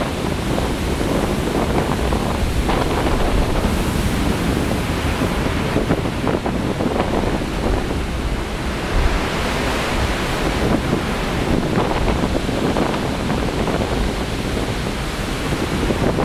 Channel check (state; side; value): identical; both; correlation 1.00